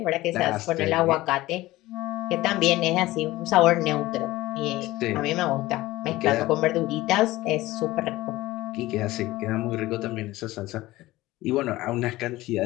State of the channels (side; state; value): right; quieter; 17.9 dB